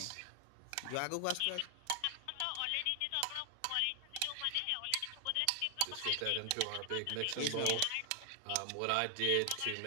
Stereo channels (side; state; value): both; different; correlation 0.00